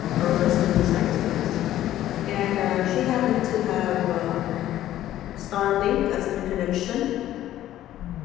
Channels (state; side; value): quieter; right; 13.2 dB